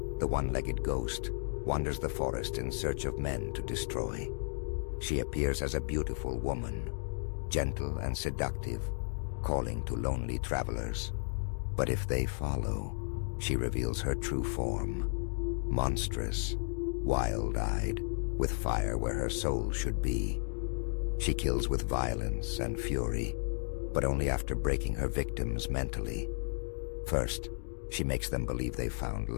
the one-legged ghost, wanders the forest in search of men to destroy. She appears as a beautiful woman, gentle and seductive, calling to lonely travelers. But if they follow, she reveals her true form, monstrous, wild-eyed, with fire where her soul should be. She kills with violence and fury, but only after breaking her victims mentally. First, she makes them believe they've found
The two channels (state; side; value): silent; right; digital silence